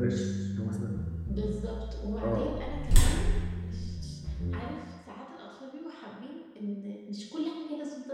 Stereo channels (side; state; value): both; identical; correlation 1.00